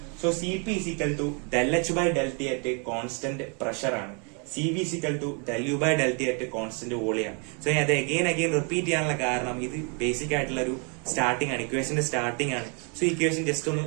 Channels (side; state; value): left; quieter; 36.7 dB